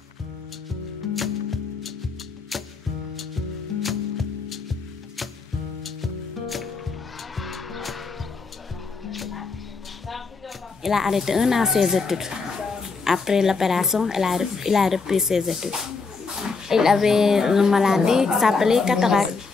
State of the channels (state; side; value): quieter; right; 4.5 dB